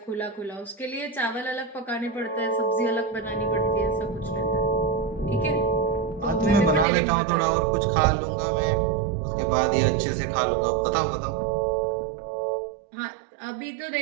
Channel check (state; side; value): drops out; left; at 6.9 s